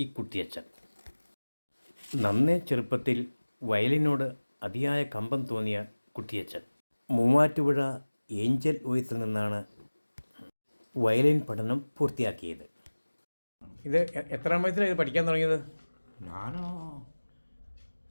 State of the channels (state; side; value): inverted; both; correlation -1.00